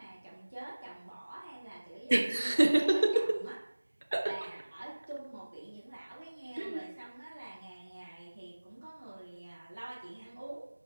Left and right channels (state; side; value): inverted; both; correlation -1.00